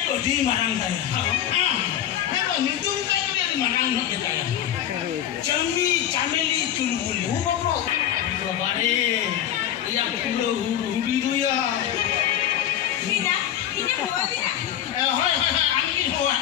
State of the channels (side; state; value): right; quieter; 11.0 dB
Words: को दी मारंग था हां मैं तो नितुम का कुड़ी मारंग न देता है चमी चामेली चुलबुली वो बाबू बारे या कुलो हुडी दो या Neena ini huwa dia hai angin huwa